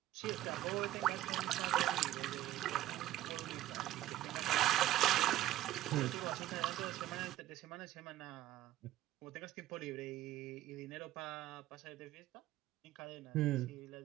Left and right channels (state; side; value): quieter; left; 14.5 dB